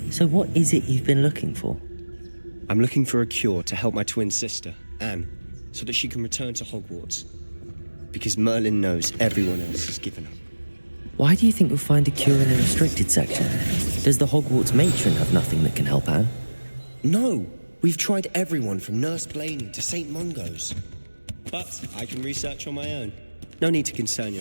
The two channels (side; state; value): both; inverted; correlation -1.00